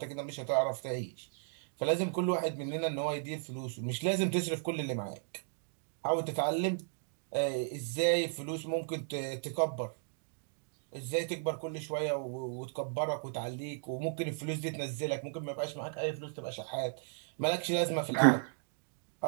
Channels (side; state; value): left; silent; digital silence